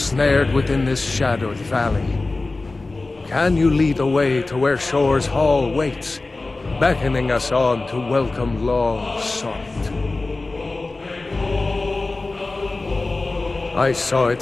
within this shadowed valley. Can you lead the way to where Shore's Hall waits, beckoning us on to welcome long sought? I saw it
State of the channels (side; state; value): right; quieter; 3.3 dB